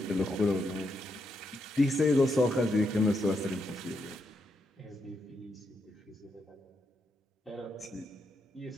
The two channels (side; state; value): both; normal; correlation 0.81